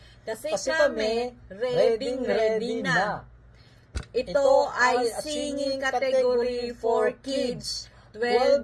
Kasi kami, ready na. Ito ay singing category for kids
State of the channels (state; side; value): identical; both; correlation 1.00